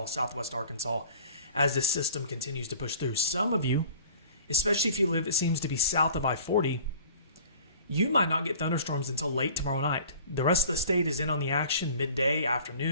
southwest Arkansas, as this system continues to push through. Some of you, especially if you live, it seems to be south of I-40, you might not get thunderstorms until late tomorrow night. The rest of the state is in on the action midday,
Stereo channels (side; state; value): both; inverted; correlation -0.45